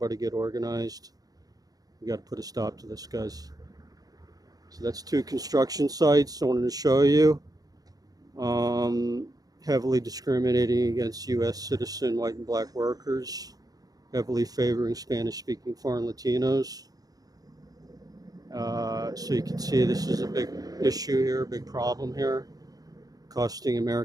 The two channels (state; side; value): late; left; 0.18 ms